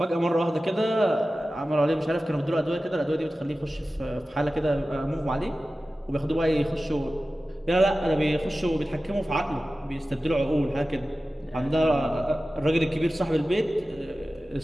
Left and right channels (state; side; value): normal; both; correlation 0.95